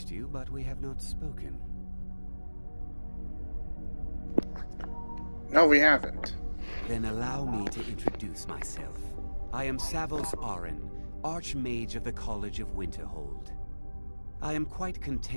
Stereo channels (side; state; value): both; inverted; correlation -1.00